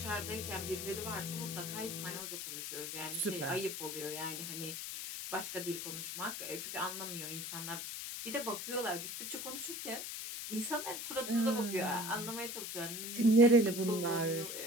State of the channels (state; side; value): noise; left; hiss, 5 dB below the sound